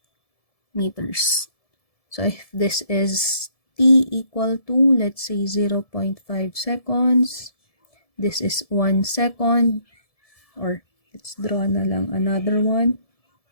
meters. So if this is t equal to, let's say, 0.5 seconds, this is 1 second, or let's draw na lang another one.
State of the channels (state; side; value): late; right; 1.7 ms